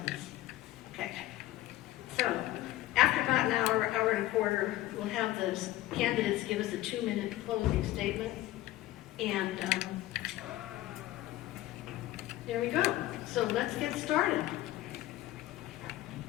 Okay. So, after about an hour, hour and a quarter, we'll have the candidates give us a 2-minute closing statement. And there we go. So let's get started.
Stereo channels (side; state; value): right; quieter; 15.7 dB